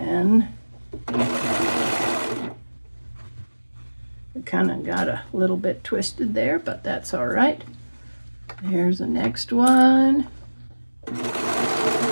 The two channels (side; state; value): both; inverted; correlation -1.00